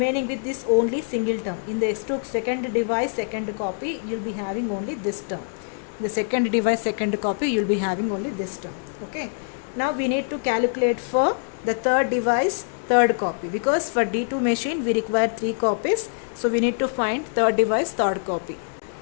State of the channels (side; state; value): right; silent; 62 dB below the other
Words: with this only single term. In the S2 second device, second copy, you will be having only this term. The second device, second copy, you will be having only this term. Okay. Now we need to calculate for the third device, third copy. Because for D2 machine, we require 3 copies. So we need to find third device, third copy.